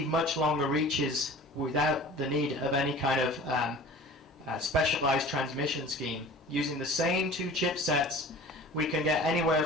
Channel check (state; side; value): normal; both; correlation 0.42